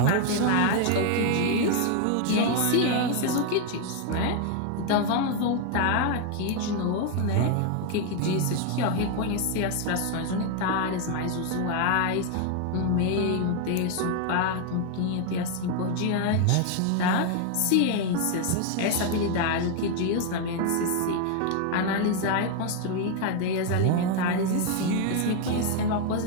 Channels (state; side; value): different; both; correlation 0.01